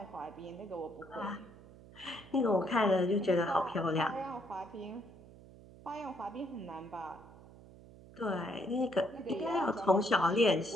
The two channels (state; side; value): noise; right; hum, 20 dB below the sound